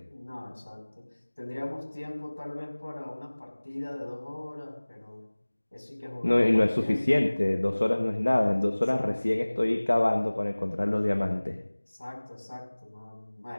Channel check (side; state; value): both; inverted; correlation -1.00